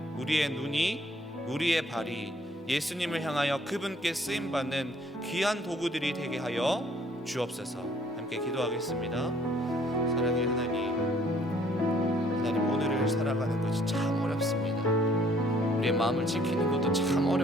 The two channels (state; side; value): normal; both; correlation 0.61